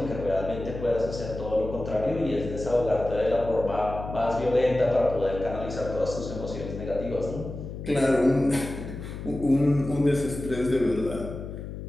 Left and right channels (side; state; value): left; noise; hum, 9 dB below the sound